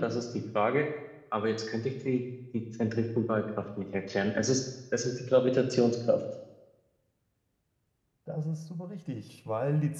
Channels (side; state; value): both; identical; correlation 1.00